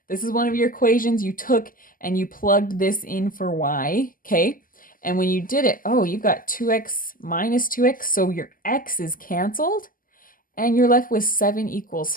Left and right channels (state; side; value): late; right; 0.41 ms